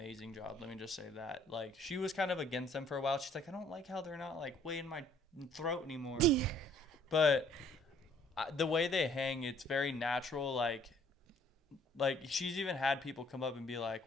job. Let me just say that. Like, she was kind of against them for a while. She's like, I don't like how they're not like way in my throat anymore. But the way they hang, it's very natural. Like she's even had people come up and be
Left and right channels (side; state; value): both; normal; correlation 0.59